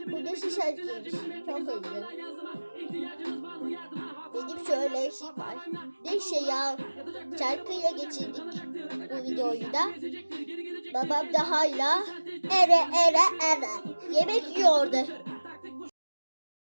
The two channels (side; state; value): both; inverted; correlation -1.00